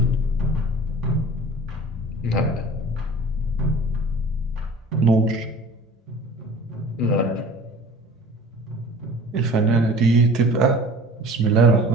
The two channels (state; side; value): normal; both; correlation 0.43